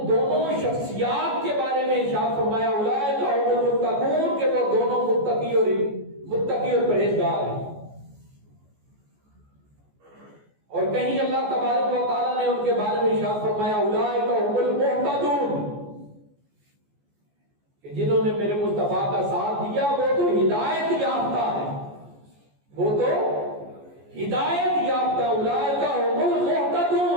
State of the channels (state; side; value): late; left; 14 ms